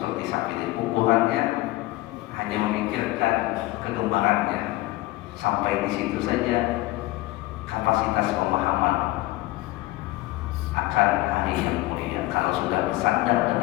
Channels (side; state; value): right; quieter; 18.5 dB